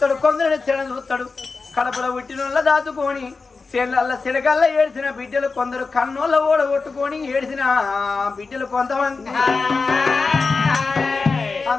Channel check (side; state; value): right; quieter; 4.3 dB